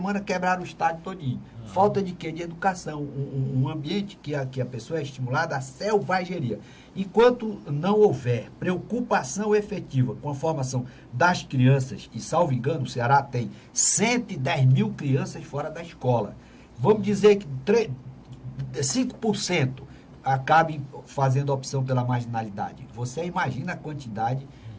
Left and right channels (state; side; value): identical; both; correlation 1.00